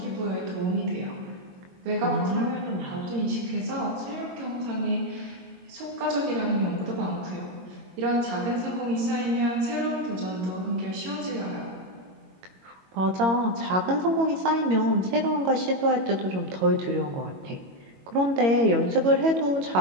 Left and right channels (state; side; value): late; left; 22 ms